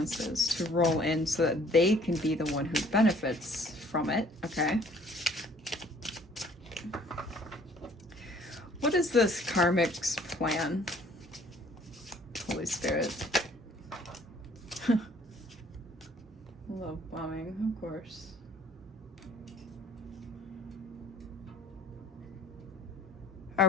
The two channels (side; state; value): both; normal; correlation 0.57